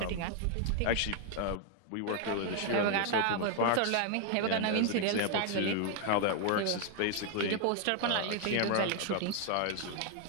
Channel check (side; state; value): both; different; correlation 0.00